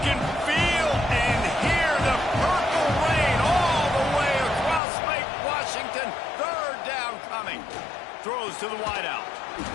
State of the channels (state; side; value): drops out; right; at 4.8 s